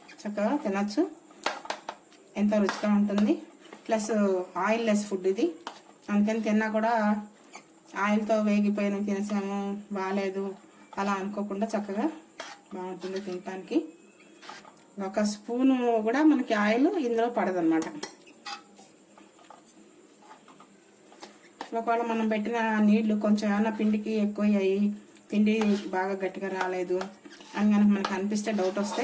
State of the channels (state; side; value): identical; both; correlation 1.00